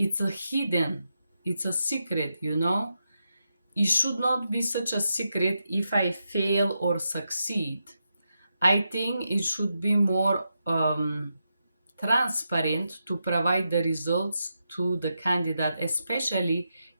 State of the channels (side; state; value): both; inverted; correlation -0.86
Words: a hidden, it's a secret, you know. It should not be such a secret if I fail or succeed. I think it should be more transparent to provide the results to the candidate, especially